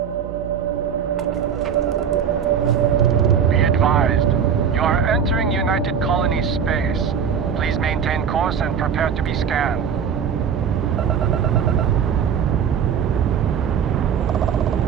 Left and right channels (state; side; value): quieter; left; 7.5 dB